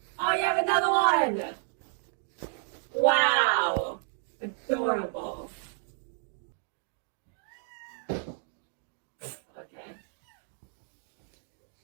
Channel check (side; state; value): left; silent; digital silence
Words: Oh, you have another one! Wow! Adorable. Okay.